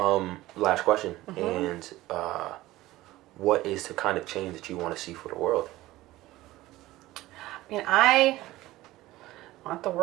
Last question. And what is the kind of change that you want to see for the world? I mean, I want the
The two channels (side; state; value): left; quieter; 17.2 dB